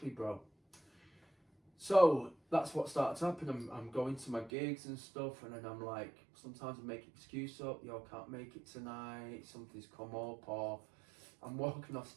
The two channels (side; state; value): left; drops out; at 4.5 s